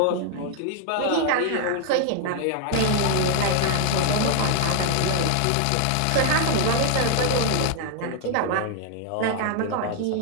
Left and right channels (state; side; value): different; both; correlation 0.00